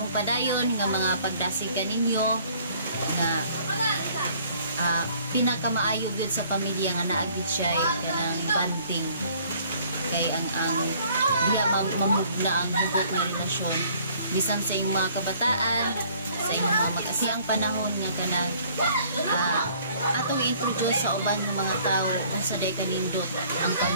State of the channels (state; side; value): inverted; both; correlation -0.58